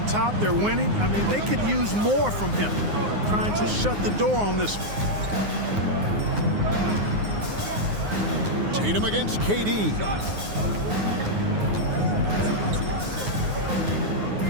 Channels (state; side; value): late; left; 9.6 ms